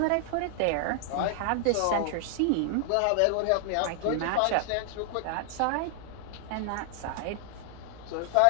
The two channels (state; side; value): different; both; correlation 0.00